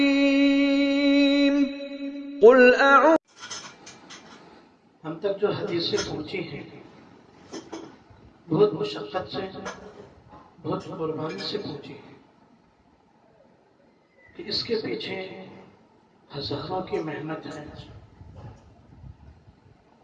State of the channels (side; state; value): both; identical; correlation 1.00